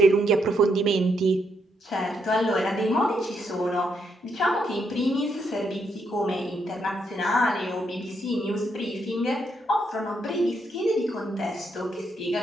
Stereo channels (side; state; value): both; normal; correlation 0.77